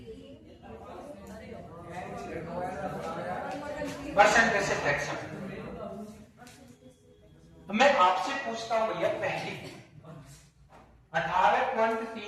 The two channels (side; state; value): both; identical; correlation 1.00